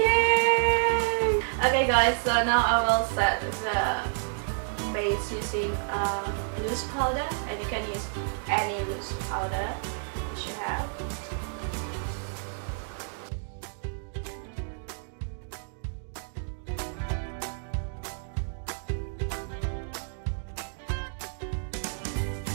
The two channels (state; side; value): silent; left; digital silence